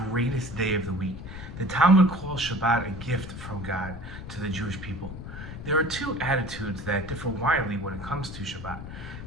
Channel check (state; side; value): noise; left; rumble, 10 dB below the sound